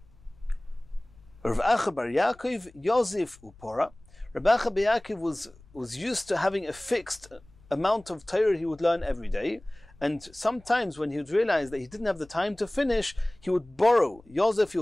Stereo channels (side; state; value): left; noise; rumble, 26 dB below the sound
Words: Rav Acha bar Yaakov Yosef upora. Rav Acha bar Yaakov was used to having a fixed amount of Torah he would learn every day, and sometimes when he would realize that he didn't have the time to finish, he would borrow. Yosef, he